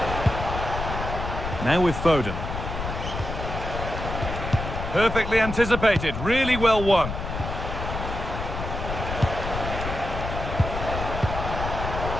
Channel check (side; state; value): left; noise; rumble, 5 dB below the sound